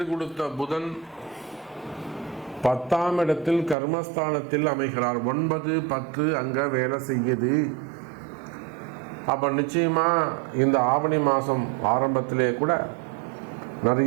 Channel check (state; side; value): drops out; left; at 3.8 s